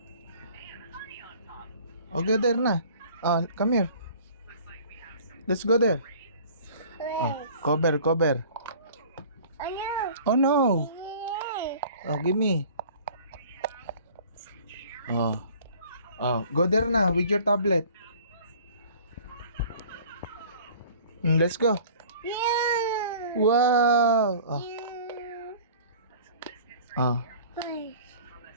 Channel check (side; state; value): both; inverted; correlation -0.48